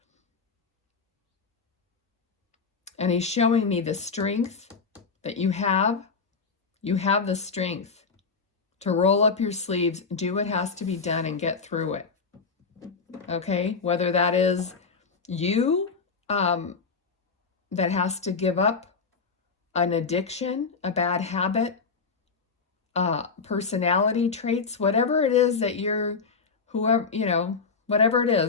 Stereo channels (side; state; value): right; quieter; 4.9 dB